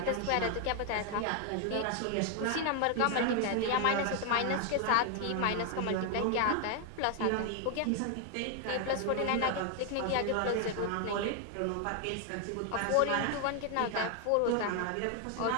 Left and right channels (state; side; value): different; both; correlation 0.00